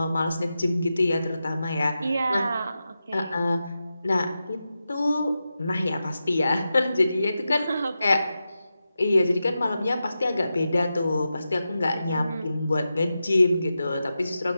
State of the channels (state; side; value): inverted; both; correlation -0.91